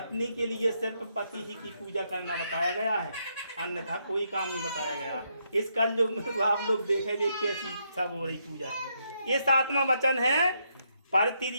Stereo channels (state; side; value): inverted; both; correlation -0.77